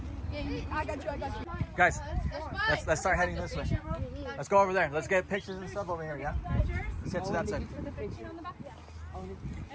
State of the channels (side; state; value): both; identical; correlation 1.00